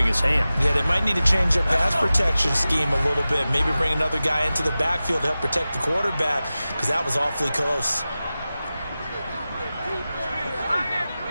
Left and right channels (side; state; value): both; inverted; correlation -0.95